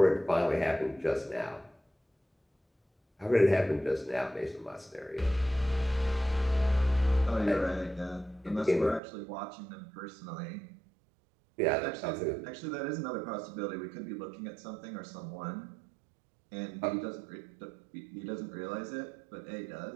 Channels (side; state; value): left; drops out; at 9.0 s